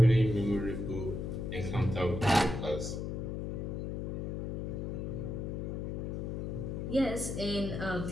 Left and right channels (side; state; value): left; noise; hum, 3 dB below the sound